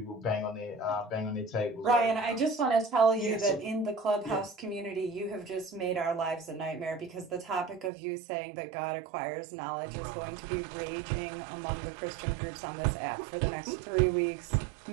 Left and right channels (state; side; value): drops out; left; at 7.9 s